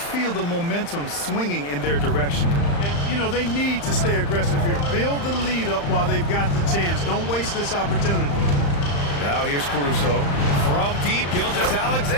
the momentum swinging in their direction. And, you know, they need to stay aggressive here. Build the lead up while they've got the chance. Don't waste this opportunity. Now here's Caruso. From deep,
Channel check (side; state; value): right; late; 35 ms